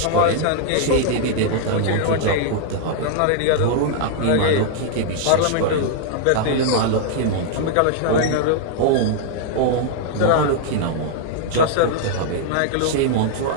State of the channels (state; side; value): different; both; correlation -0.01